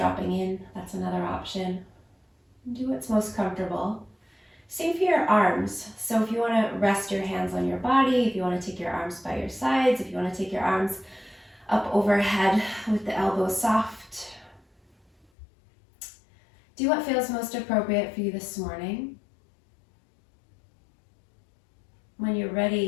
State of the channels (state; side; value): drops out; right; at 15.2 s